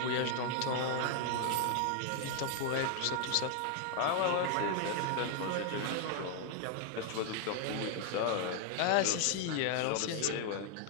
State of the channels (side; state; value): both; different; correlation 0.00